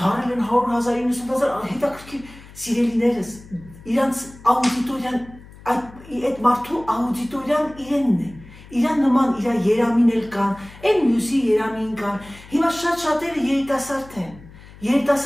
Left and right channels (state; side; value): noise; left; hum, 20 dB below the sound